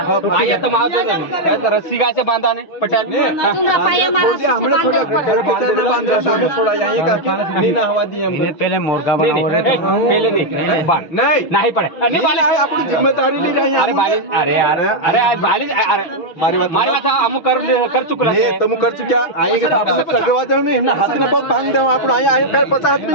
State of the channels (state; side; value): late; right; 6.0 ms